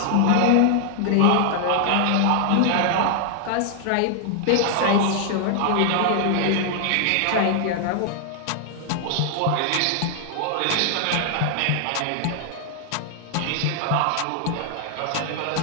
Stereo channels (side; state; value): both; different; correlation 0.00